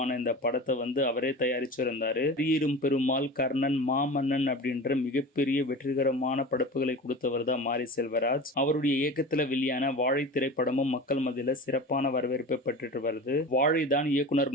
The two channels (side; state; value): both; normal; correlation 0.33